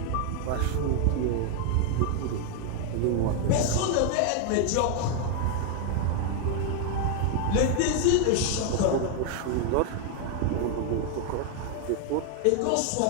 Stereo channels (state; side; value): different; both; correlation 0.00